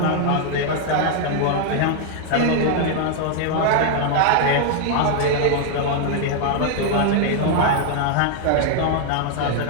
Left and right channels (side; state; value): both; different; correlation 0.00